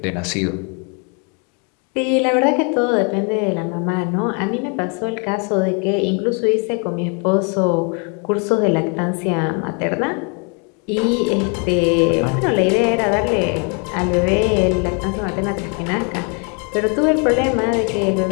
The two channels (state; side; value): quieter; right; 36.3 dB